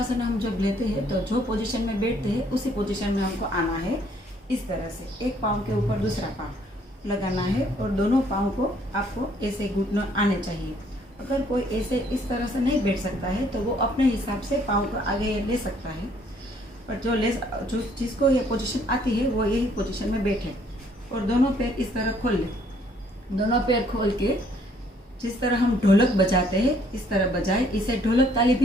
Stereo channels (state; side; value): normal; both; correlation 0.64